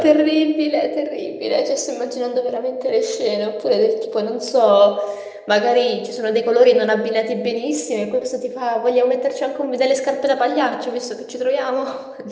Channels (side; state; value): both; identical; correlation 1.00